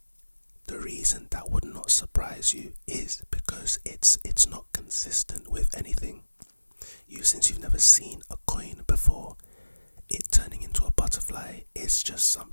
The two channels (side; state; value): both; inverted; correlation -1.00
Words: The reason that would not surprise you is because it's not consistent with anything. Since you've never seen a coin before, it turning into a butterfly is just